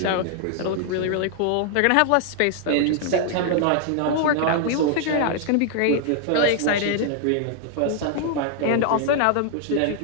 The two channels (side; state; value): both; different; correlation 0.00